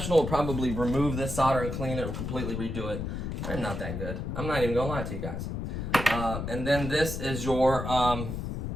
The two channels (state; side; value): noise; left; rumble, 4 dB below the sound